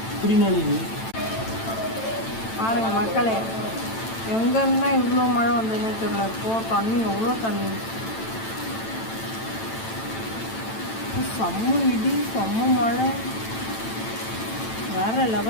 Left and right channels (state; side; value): late; right; 9.0 ms